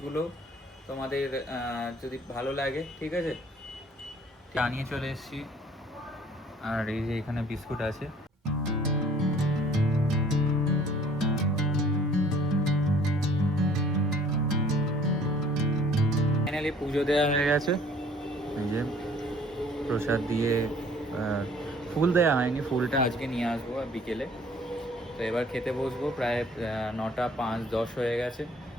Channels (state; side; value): normal; both; correlation 0.55